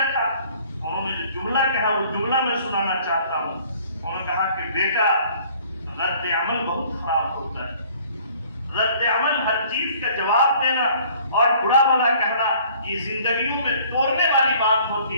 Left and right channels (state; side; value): inverted; both; correlation -0.55